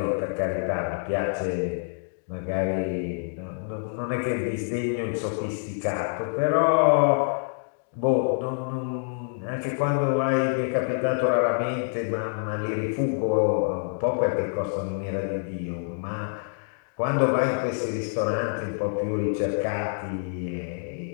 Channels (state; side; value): silent; right; digital silence